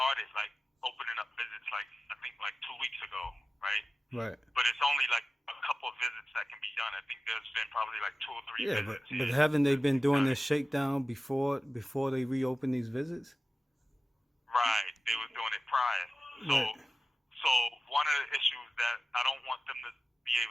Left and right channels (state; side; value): normal; both; correlation 0.95